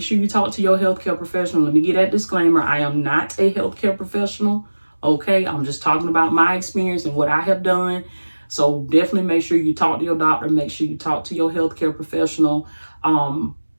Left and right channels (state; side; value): inverted; both; correlation -1.00